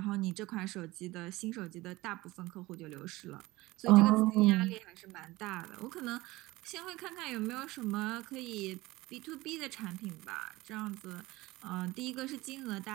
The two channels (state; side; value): quieter; left; 19.8 dB